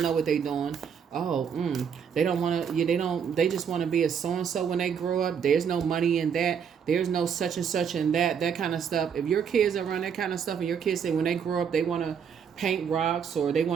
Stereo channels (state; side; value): quieter; left; 7.3 dB